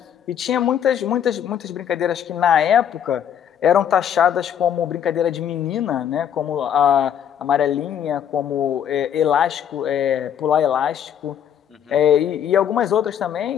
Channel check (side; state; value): right; quieter; 9.1 dB